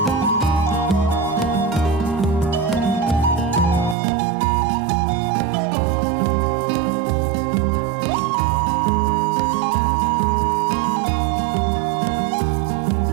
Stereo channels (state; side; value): drops out; left; at 4.0 s